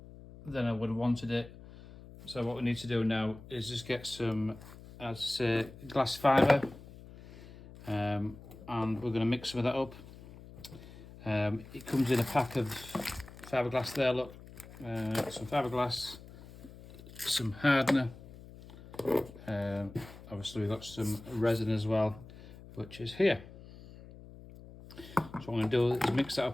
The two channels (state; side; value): noise; left; hum, 18 dB below the sound